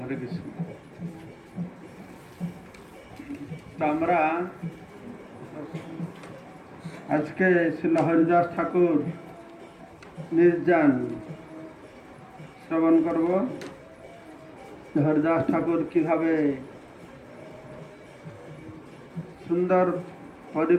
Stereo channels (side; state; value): both; identical; correlation 1.00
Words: হরে কৃষ্ণ। তো আমরা আজকে শ্রীল হরিদাস ঠাকুর নির্যান শ্রবণ করব। হরিদাস ঠাকুর কিভাবে সুন্দর